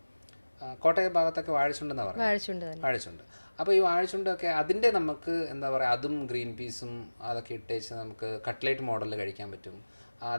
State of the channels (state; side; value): inverted; both; correlation -1.00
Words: കോട്ടയം ഭാഗത്തൊക്കെ വാഴച്ചുണ്ടെന്നാണ് പറയുന്നത്, വാഴച്ചുണ്ട്. അപ്പോൾ ഈ വാഴച്ചുണ്ടൊക്കെ അതിൻ്റെ നമുക്ക് എന്താ പറയുക, അതും ഗ്രീൻ പീസും അതൊക്കെ ഇട്ടേച്ച് നമുക്ക് കട്ട്ലേറ്റ് മോഡലിൽ കഴിക്കാൻ പറ്റും.